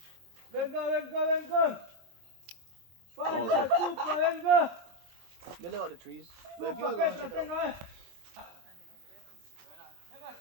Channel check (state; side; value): late; left; 23 ms